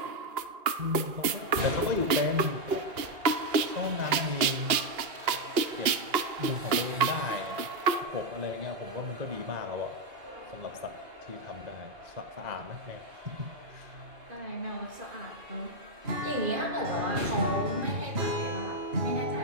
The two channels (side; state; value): left; late; 2.8 ms